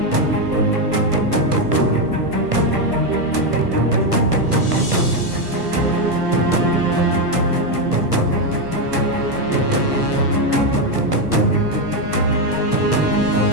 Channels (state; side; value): late; left; 1.3 ms